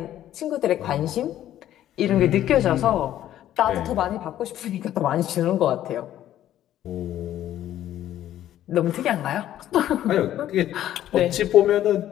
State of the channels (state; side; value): quieter; right; 12.3 dB